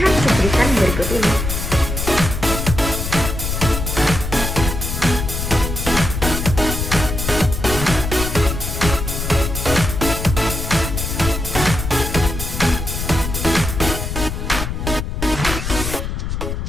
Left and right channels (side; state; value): left; noise; rumble, 4 dB below the sound